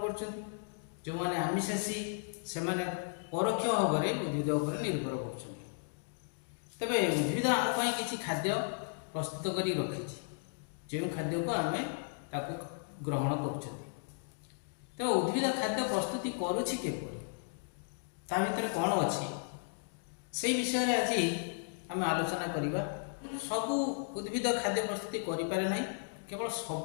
कर जो माने आमिषासी से परोक्ष भाव में उद्भिद उपर निर्भर कर तेरे उद्भिद आम किसी खाद्य प्रस्तुत कर रखी जो खाद्य को आम ग्रहण कर तेज उद्भिद खाद्य प्रस्तुति करुच्ची भर कौन अच्छी से विषय में आज आम आलोचना करवा सबू उद्भिद खाद्य प्रस्तुति करें ना केवल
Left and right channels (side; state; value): right; silent; digital silence